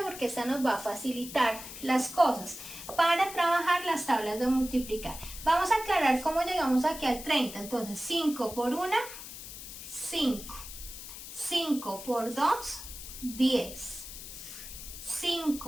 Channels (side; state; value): left; noise; hiss, 11 dB below the sound